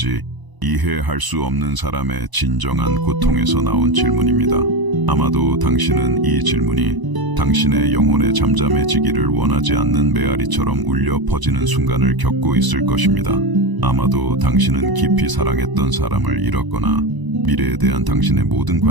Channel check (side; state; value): left; late; 1.0 ms